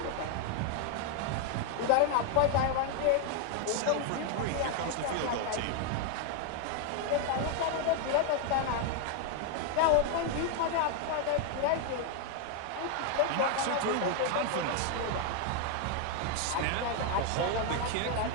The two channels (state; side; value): different; both; correlation 0.01